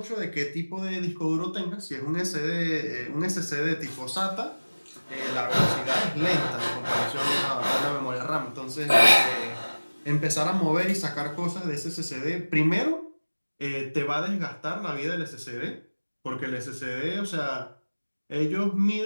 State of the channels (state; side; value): inverted; both; correlation -1.00